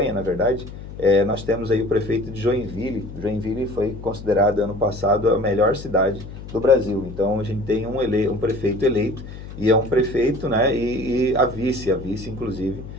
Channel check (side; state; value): left; noise; hum, 12 dB below the sound